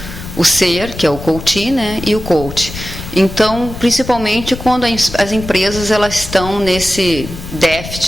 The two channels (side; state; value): left; noise; rumble, 11 dB below the sound